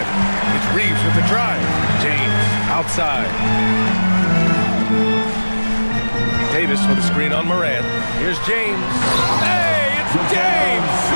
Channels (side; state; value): both; inverted; correlation -1.00